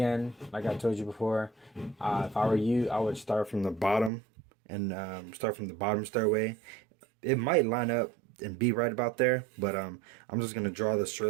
like I told you before, if I were you, I would start from the bottom and start from the bottom stairway. It might line up and be right about there, but I'm just gonna draw the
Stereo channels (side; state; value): left; drops out; at 4.1 s